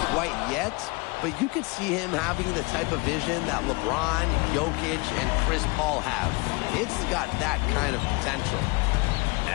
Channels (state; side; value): quieter; right; 27.7 dB